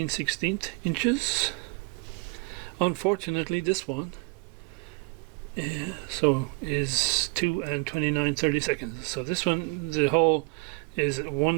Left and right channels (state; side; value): quieter; left; 30.8 dB